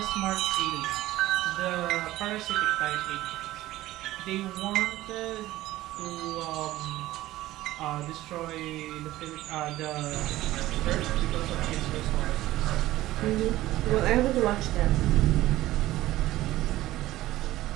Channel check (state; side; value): quieter; left; 16.0 dB